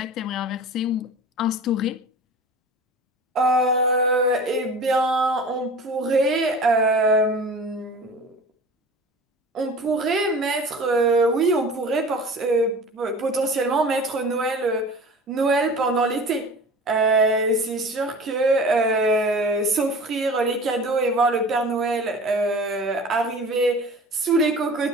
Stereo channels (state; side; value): normal; both; correlation 0.39